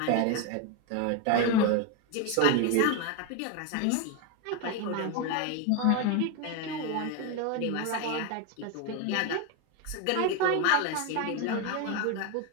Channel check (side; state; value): both; different; correlation 0.02